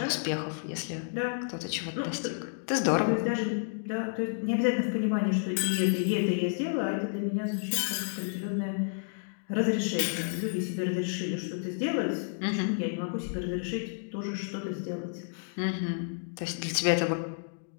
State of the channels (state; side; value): silent; right; digital silence